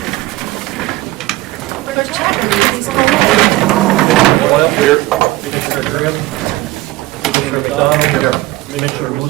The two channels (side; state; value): left; quieter; 18.7 dB